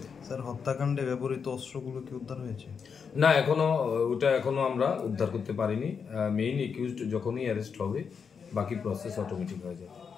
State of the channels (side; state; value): right; quieter; 6.2 dB